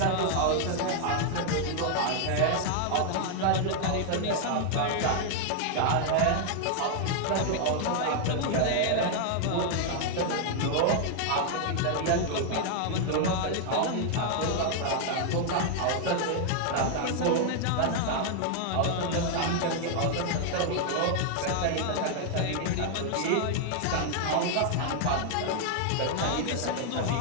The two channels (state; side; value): different; both; correlation 0.00